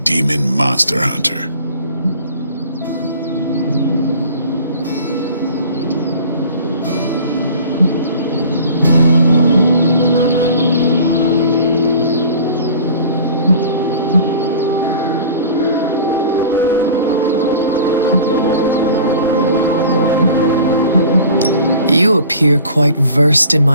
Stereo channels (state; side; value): inverted; both; correlation -0.44